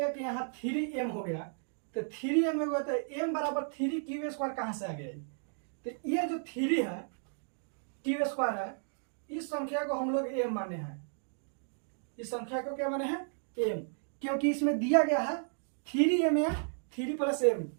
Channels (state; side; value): silent; left; digital silence